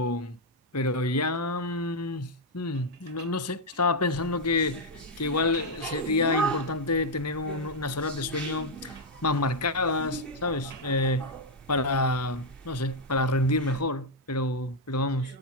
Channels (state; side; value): normal; both; correlation 0.00